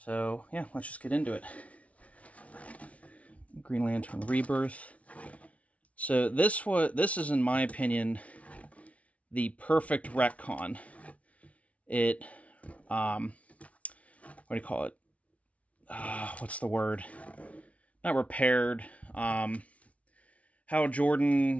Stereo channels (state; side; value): late; right; 0.065 ms